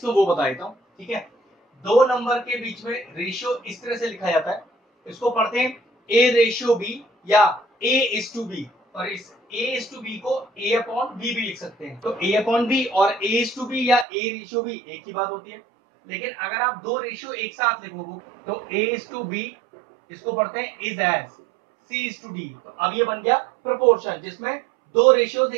वो बता देता हूँ। ठीक है, दो नंबर के बीच में रेशियो इस तरह से लिखा जाता है, इसको पढ़ते हैं ए रेशियो बी या ए इज टू बी। और इस ए इज टू बी को ए अपॉन बी भी लिख सकते हैं। तो ए अपॉन बी और ए इज टू बी या ए रेशियो बी एक ही बात होती है। लेकिन अगर आप दो रेशियो एक साथ लिखो तो ए इज टू बी, इसको पढ़ते हैं is as C is to D. तो अब ये बन गया प्रोपोर्शन जिसमें दो रेशियोज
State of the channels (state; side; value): drops out; left; at 14.1 s